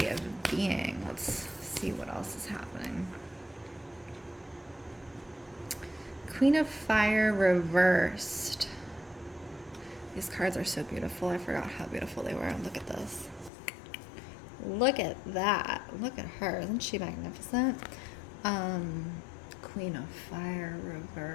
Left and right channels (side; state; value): right; drops out; at 13.5 s